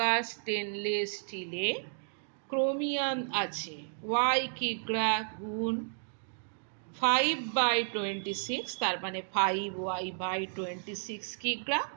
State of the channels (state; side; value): silent; left; digital silence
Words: স্টেনলেস স্টিলে ক্রোমিয়াম আছে ওয়াই কিগ্রা গুণ 5/26, তার মানে 5y/26 কিগ্রা।